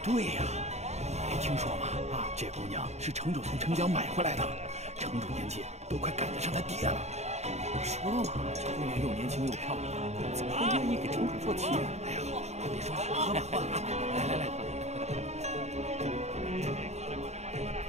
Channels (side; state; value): left; late; 0.32 ms